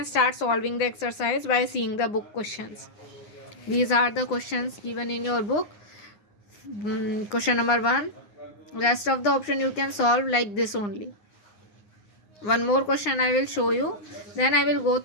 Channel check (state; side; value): late; right; 9.7 ms